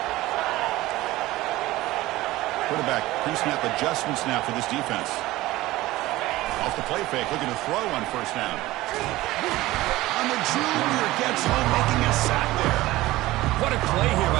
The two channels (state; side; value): quieter; left; 17.7 dB